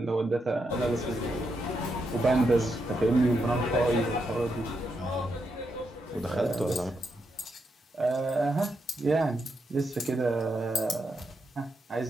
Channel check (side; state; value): both; normal; correlation 0.82